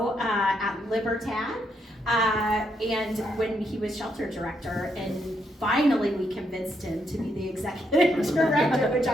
at Libertad, and when he was shelter director, and finally we convinced him to be the executive director, which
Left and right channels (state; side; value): normal; both; correlation 0.77